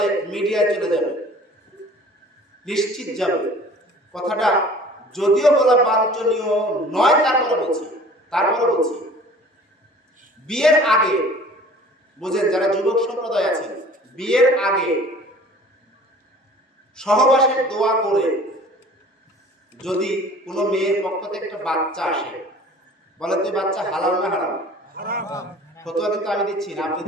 মিডিয়ায় চলে যাবে, নিশ্চিত যাবে। কথাটা যদিও বলা বাঞ্ছনীয় নয়, তারপরে বলছি বিয়ের আগে, বুঝেন যারা যুবক সম্প্রদায় আছেন, বিয়ের আগে সহবাসের দোয়া করে যদি কোনো মেয়ের পক্ষ থেকে একটা বাচ্চা আসে, বলে তো বাচ্চা হালাল না হারাম? ফতোয়া কিন্তু আমি দিচ্ছি না, আপনি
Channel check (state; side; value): normal; both; correlation 0.47